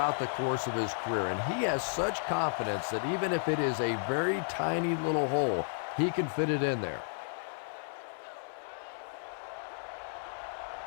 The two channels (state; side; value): silent; right; digital silence